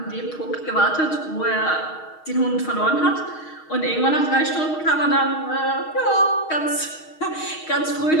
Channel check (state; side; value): late; right; 6.4 ms